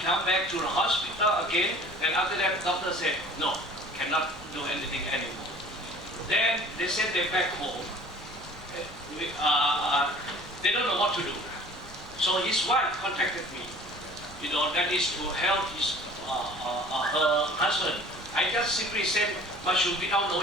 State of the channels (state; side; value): noise; left; rumble, 20 dB below the sound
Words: come back to the hospital again, and after that, doctor said, no, cannot do anything anymore. Then they sent them back home. They don't know what to do. So his wife contacted me. That is to help her husband. I just simply said mushroom without